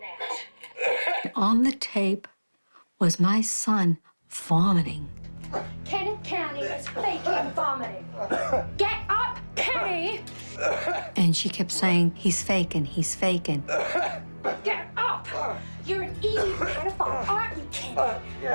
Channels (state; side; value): inverted; both; correlation -1.00